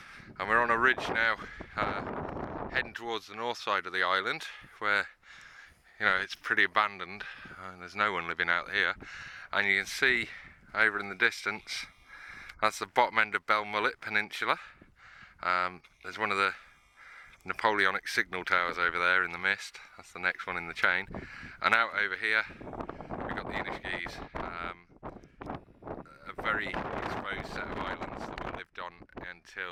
and we're on a ridge now, heading towards the north side of the island, where it's pretty abandoned and there's no one living out here. And you can see over in the distance, that's the bottom end of Belmullet Peninsula. There's one of the Napoleonic signal towers over there in the mist. That's the next one in the chain. And out over here we've got the Annagh, a very exposed set of islands that we lived on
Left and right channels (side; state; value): both; identical; correlation 1.00